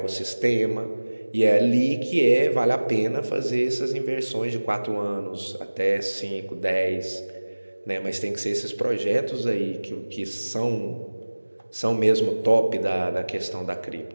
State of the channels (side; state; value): both; inverted; correlation -1.00